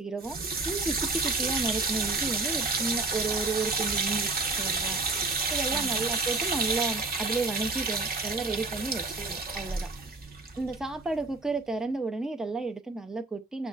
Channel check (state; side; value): quieter; left; 3.4 dB